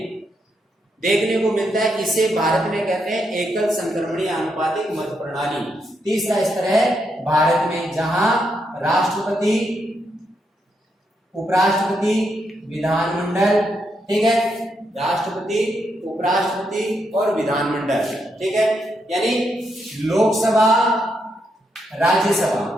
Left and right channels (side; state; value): both; normal; correlation 0.80